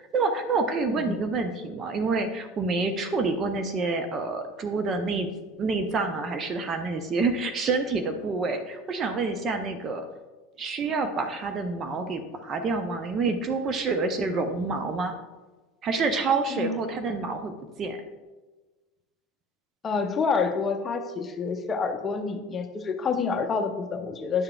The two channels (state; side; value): normal; both; correlation 0.43